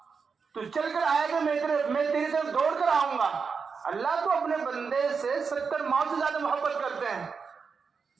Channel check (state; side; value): quieter; left; 5.5 dB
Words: تو چل کر آئے گا، میں تیری طرف دوڑ کر آؤں گا. اللہ تو اپنے بندے سے 70 ماہ سے زیادہ محبت کرتے ہیں.